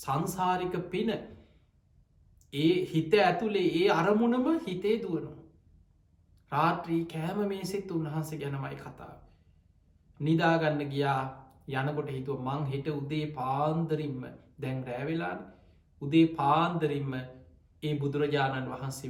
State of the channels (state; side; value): identical; both; correlation 1.00